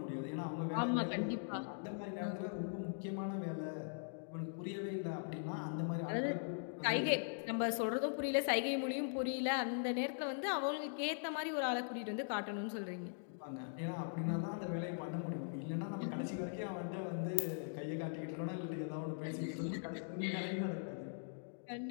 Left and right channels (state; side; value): silent; right; digital silence